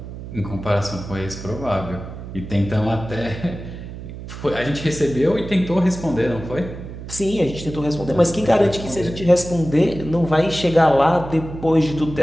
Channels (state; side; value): noise; right; hum, 11 dB below the sound